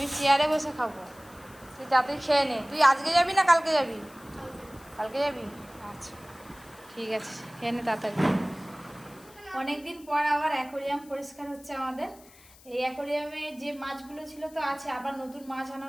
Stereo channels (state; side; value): noise; left; hiss, 24 dB below the sound